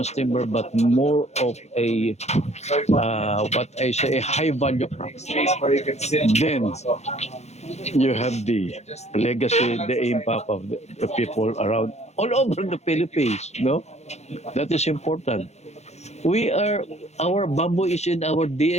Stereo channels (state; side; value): late; right; 0.32 ms